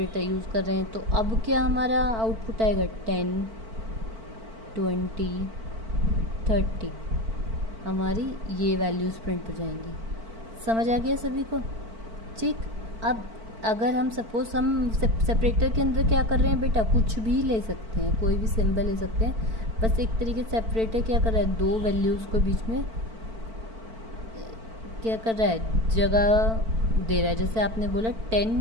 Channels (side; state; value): left; late; 4.5 ms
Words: यूज़ कर रहे हैं। तो अब क्या हमारा आउटपुट आएगा, 10, 20, 30 हमारी ये वैल्यूज़ प्रिंट हो जाएंगी। समझ आ गया सभी को। ठीक, अब अगर हम सपोज़ हम सेपरेटर के अंदर क्या कर रहे हैं बेटा, कुछ भी ले सकते हैं, कोई भी सिंबल ले सकते हैं, बस एक तरीके से सेपरेटर क्या कर रहा है, दो वैल्यूज़ को बीच में क्या कर रहा है, जगह दे रहा है। जैसे आपने बोला 10,